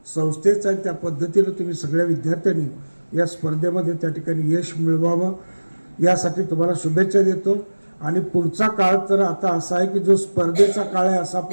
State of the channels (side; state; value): both; inverted; correlation -1.00